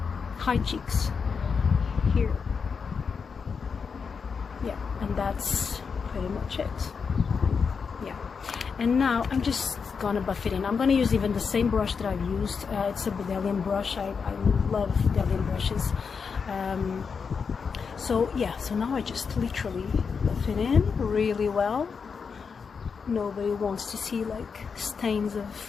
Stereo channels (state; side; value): quieter; right; 5.7 dB